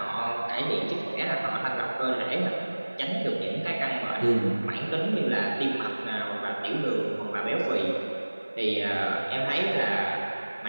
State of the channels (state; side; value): inverted; both; correlation -1.00